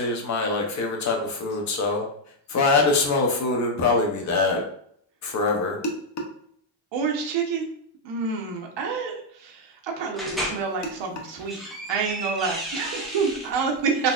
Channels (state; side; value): normal; both; correlation 0.01